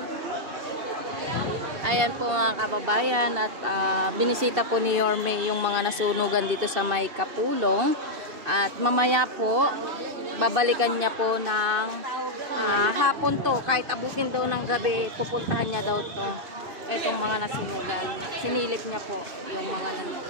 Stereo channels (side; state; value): left; late; 2.7 ms